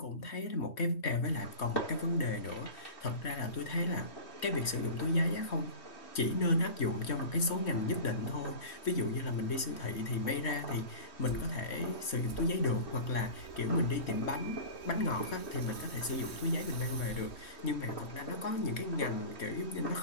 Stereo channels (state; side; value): late; right; 3.2 ms